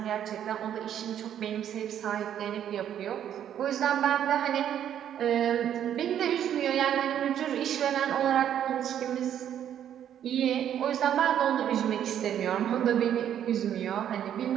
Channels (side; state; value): left; quieter; 10.0 dB